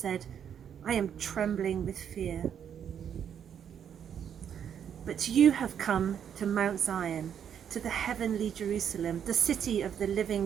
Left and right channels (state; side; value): quieter; left; 8.6 dB